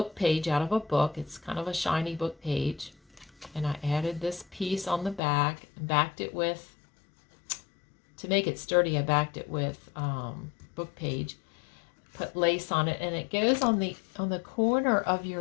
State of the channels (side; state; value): right; drops out; at 5.2 s